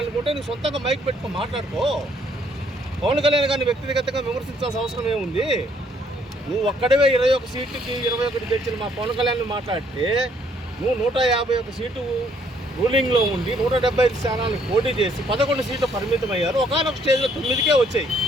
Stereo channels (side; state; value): both; normal; correlation 0.66